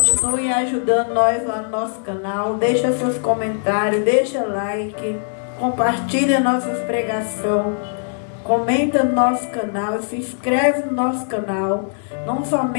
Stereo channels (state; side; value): silent; right; digital silence